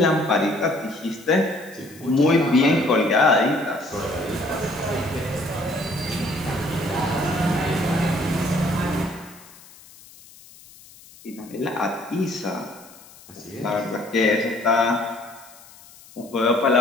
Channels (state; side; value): noise; left; hiss, 22 dB below the sound